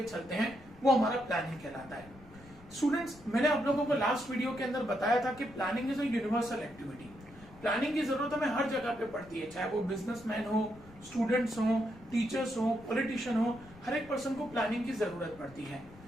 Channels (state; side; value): noise; left; rumble, 21 dB below the sound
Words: चलते हैं, वो हमारा प्लानिंग कहलाता है। स्टूडेंट्स, मैंने आप लोगों को लास्ट वीडियो के अंदर बताया था कि planning is a universal activity. Planning की जरूरत हमें हर जगह पे पड़ती है, चाहे वो बिजनेसमैन हो, स्टूडेंट्स हो, टीचर्स हो, पॉलिटिशियन हो, हर एक पर्सन को प्लानिंग की जरूरत पड़ती है।